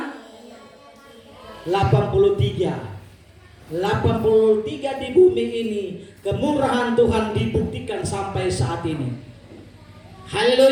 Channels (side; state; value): both; identical; correlation 1.00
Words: 83 di bumi ini kemurahan Tuhan dibuktikan sampai saat ini.